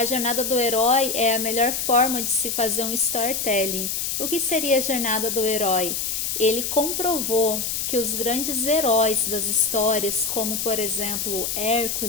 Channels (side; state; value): left; noise; hiss, 2 dB below the sound